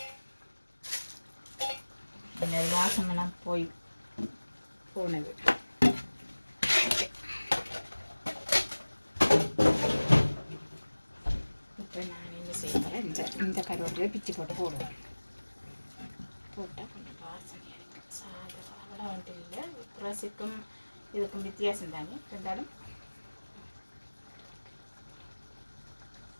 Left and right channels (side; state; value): both; inverted; correlation -1.00